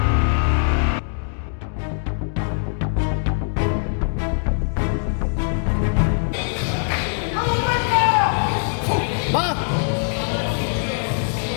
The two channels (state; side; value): silent; right; digital silence